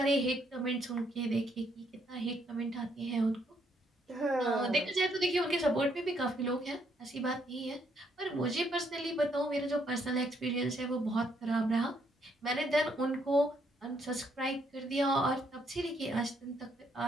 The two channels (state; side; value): normal; both; correlation 0.72